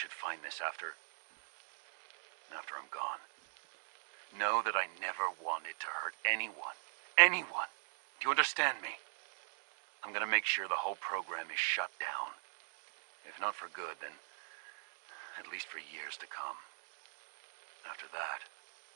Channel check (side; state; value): left; silent; digital silence